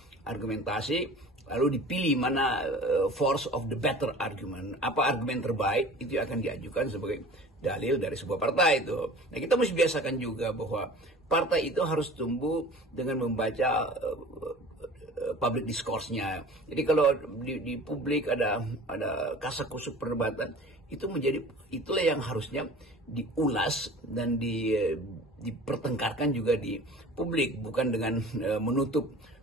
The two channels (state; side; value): normal; both; correlation 0.42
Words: argumentasi lalu dipilih mana force of the better argument, apa argumen terbaik itu akan diajukan sebagai dalil dari sebuah partai itu. Nah, kita mesti biasakan juga bahwa partai itu harus tumbuh dengan membaca public discourse-nya. Jadi kalau di publik ada kasak-kusuk perdebatan, itulah yang harusnya diulas dan dipertengkarkan juga di publik, bukan dengan menutup